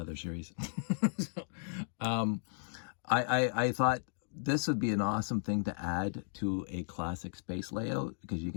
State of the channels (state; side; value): silent; right; digital silence